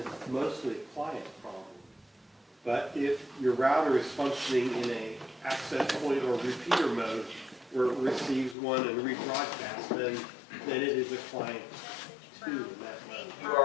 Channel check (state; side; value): drops out; right; at 8.6 s